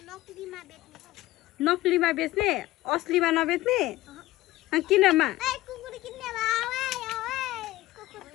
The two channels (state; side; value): quieter; right; 17.1 dB